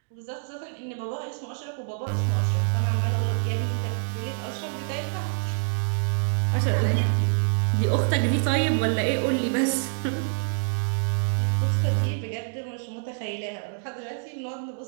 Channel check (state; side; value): silent; left; digital silence